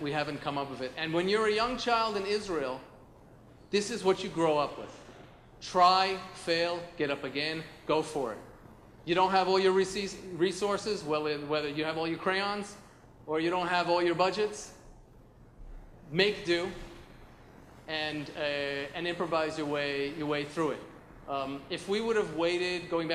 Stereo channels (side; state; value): both; identical; correlation 1.00